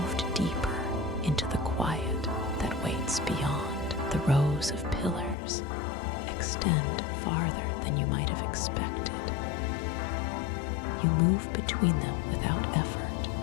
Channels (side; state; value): right; drops out; at 5.4 s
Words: deeper into the quiet that waits beyond. The rows of pillars extend farther than you might have expected. You move between them without